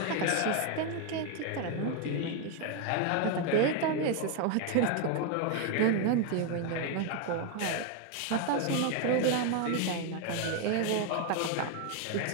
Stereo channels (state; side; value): different; both; correlation 0.01